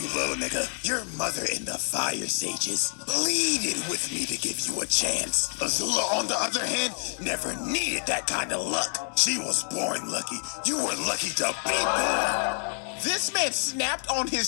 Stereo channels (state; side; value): silent; right; 60 dB below the other